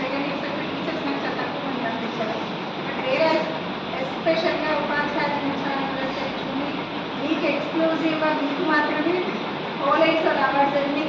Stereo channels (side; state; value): both; identical; correlation 1.00